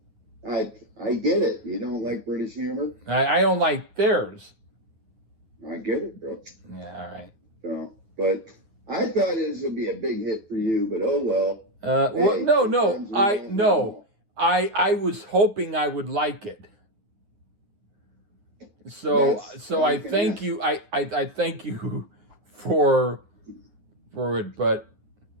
I get it. You don't like British humor? I don't like theirs. I get it, bro. Yeah, all right. So, but I thought this would be a big hit for you, but oh well. I was hoping I would like it. So I thank you. I thank you for it, but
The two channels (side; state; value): left; late; 9.3 ms